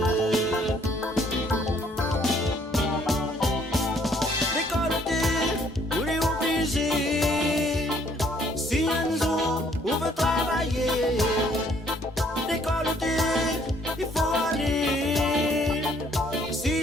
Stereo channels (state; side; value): normal; both; correlation 0.64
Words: L'école t'es, vous les obligés, si un jour, vous veut travailler. L'école t'es, il faut aller, si